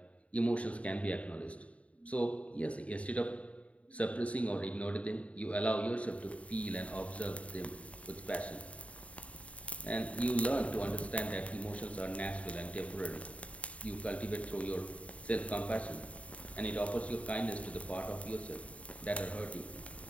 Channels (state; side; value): late; right; 0.065 ms